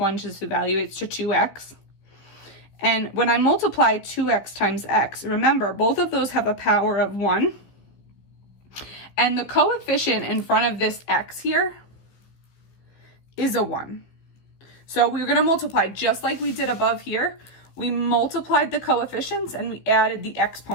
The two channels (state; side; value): late; right; 15 ms